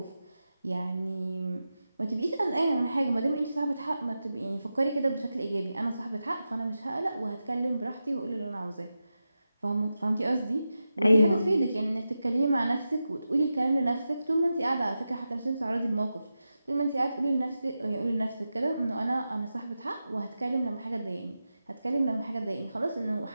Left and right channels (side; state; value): both; inverted; correlation -0.91